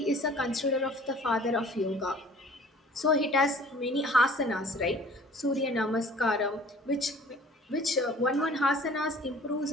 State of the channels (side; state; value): both; normal; correlation 0.50